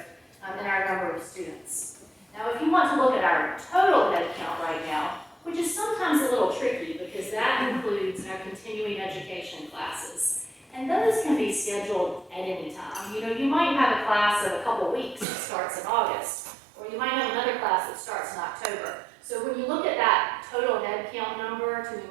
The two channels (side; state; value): left; drops out; at 15.2 s